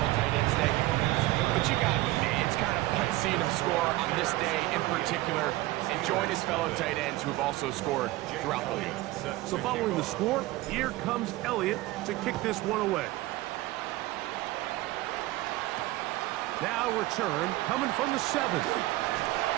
Tight Ends Day. But you got to admit, it's kind of fun seeing him score on this day in particular and join his fellow tight ends who have also scored throughout the league. So following the score, here comes Elliott to kick this one away. Now return coming from the 7.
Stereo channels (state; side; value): quieter; left; 18.4 dB